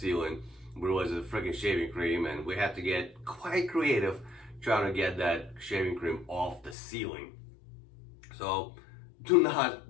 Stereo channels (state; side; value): drops out; right; at 6.8 s